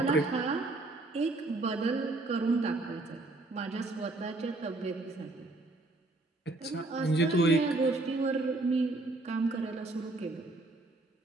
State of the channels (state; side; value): quieter; left; 3.0 dB